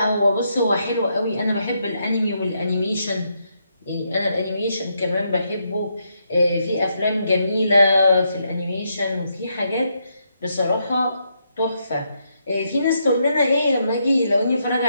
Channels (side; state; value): both; inverted; correlation -0.79